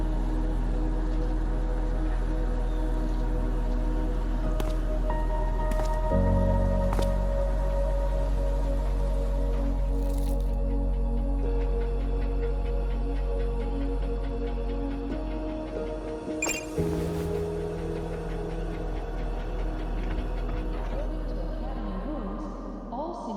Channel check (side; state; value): both; identical; correlation 1.00